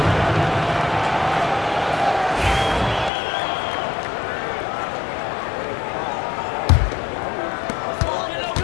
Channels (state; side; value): drops out; right; at 3.1 s